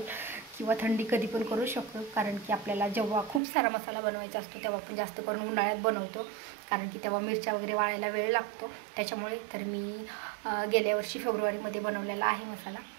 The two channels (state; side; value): drops out; left; at 3.4 s